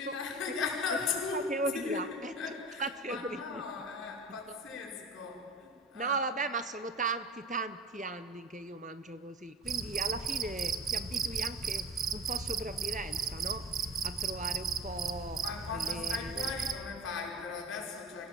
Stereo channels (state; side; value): normal; both; correlation 0.33